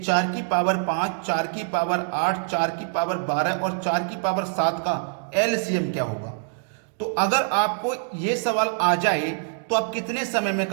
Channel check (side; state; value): left; silent; digital silence